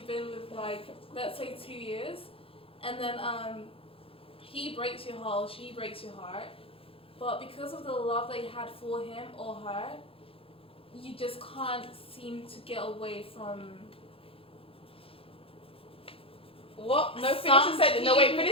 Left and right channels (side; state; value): right; late; 0.27 ms